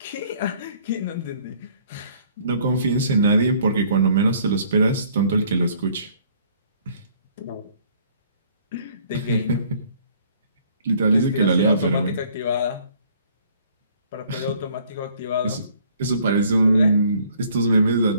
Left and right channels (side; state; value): both; inverted; correlation -0.59